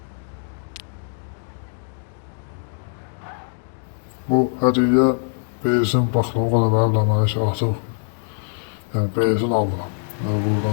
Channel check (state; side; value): silent; right; digital silence